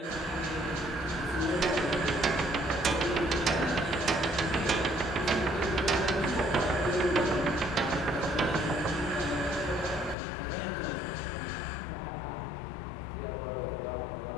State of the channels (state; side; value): drops out; right; at 10.2 s